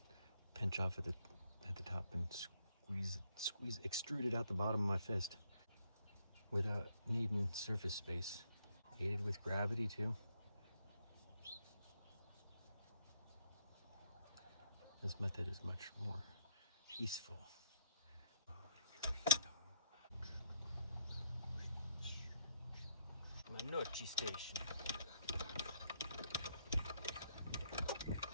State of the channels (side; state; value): both; inverted; correlation -0.72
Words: pinch off at the top and squeeze, extrude it out the bottom of my fist without needing surface space. Aided with gravity too. This method is much more peaceful. My Nochi station.